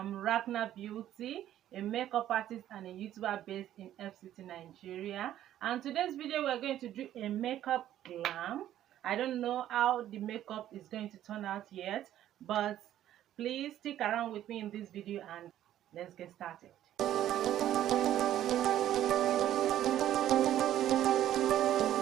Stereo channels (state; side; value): quieter; left; 12.1 dB